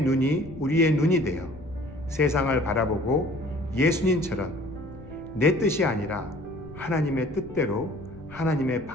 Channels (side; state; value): left; noise; rumble, 19 dB below the sound